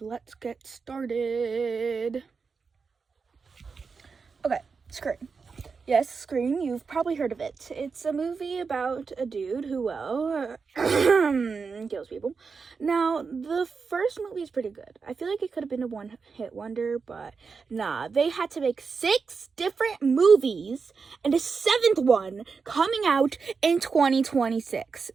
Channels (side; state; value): left; quieter; 5.1 dB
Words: get started. Okay, Scream. Yes, Scream, you've probably heard of it. It's a movie about a dude who, kills people. Now, the first movie is pretty good. I feel like it could have been a one-hit wonder, but nah. They had to make 6 different movies, and a 7th one coming out in 2026,